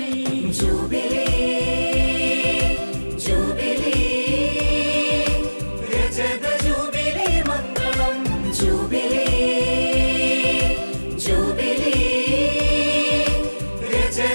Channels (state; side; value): inverted; both; correlation -1.00